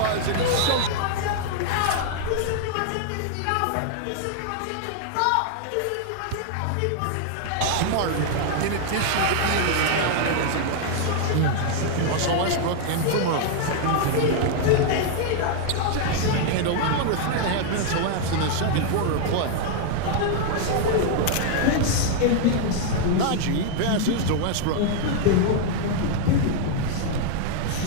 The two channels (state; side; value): different; both; correlation 0.00